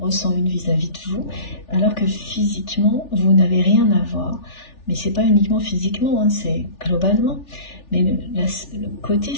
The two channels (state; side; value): late; right; 3.4 ms